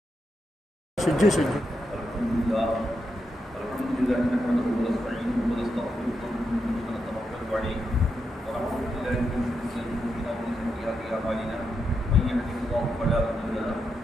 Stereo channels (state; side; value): normal; both; correlation 0.84